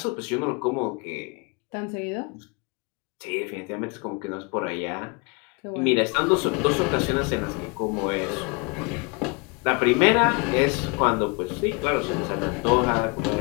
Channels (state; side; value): quieter; right; 30.8 dB